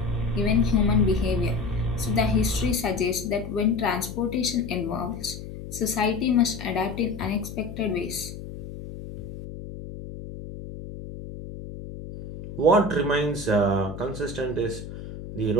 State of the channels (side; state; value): left; noise; hum, 11 dB below the sound